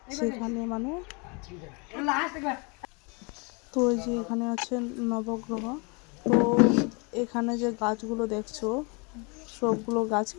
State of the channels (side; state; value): right; quieter; 31.5 dB